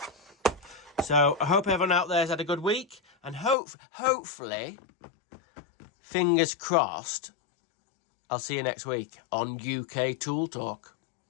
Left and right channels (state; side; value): drops out; right; at 3.6 s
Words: So I hope everyone out there has had a good week, and hopefully, fingers crossed, I'll see you next week on UK Tool Talk.